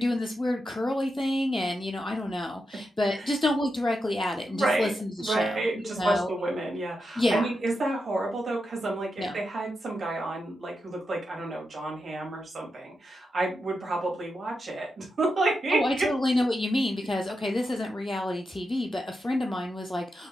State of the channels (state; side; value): normal; both; correlation 0.87